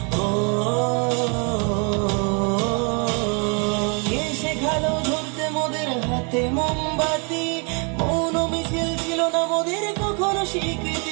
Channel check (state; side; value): quieter; left; 35.6 dB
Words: কে শেখালো ধরতে মোদের হাতে মোমবাতি, মৌন মিছিল ছিল না মোদের কখনো